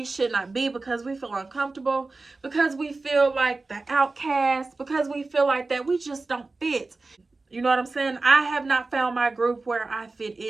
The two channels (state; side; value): quieter; left; 3.5 dB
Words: should not be because we feel uncomfortable, because we feel like the outcast, because we feel like that we just don't fit. You know what I'm saying? I have not found my group where I fit